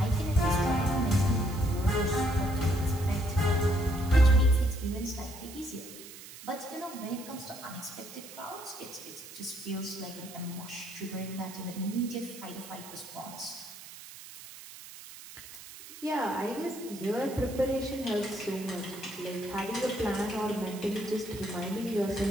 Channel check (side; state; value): right; noise; hiss, 15 dB below the sound